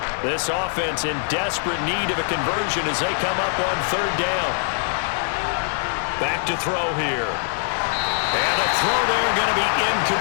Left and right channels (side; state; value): right; silent; digital silence